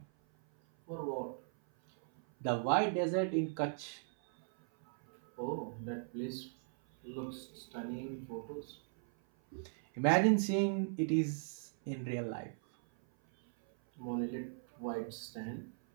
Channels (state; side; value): silent; left; 52 dB below the other